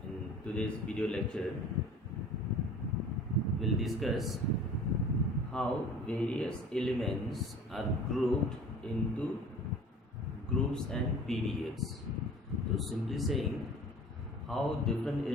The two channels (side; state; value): both; normal; correlation 0.44